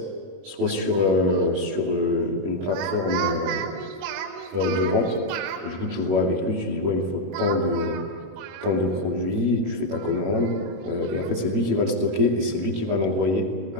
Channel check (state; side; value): late; left; 21 ms